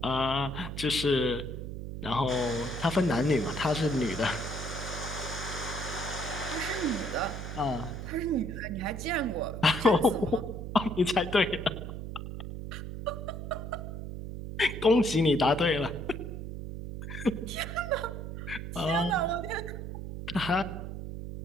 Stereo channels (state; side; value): noise; right; hum, 7 dB below the sound